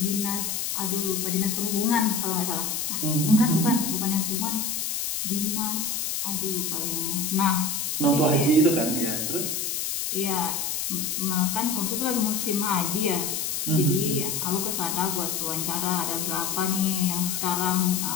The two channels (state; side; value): noise; left; hiss, 1 dB below the sound